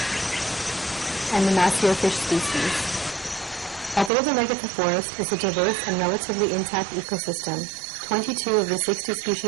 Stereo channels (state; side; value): drops out; left; at 4.1 s